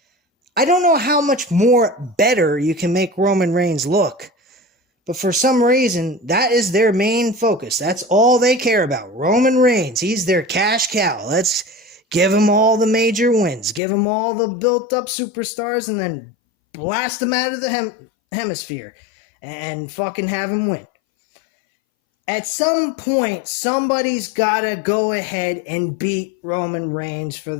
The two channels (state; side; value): drops out; right; at 13.8 s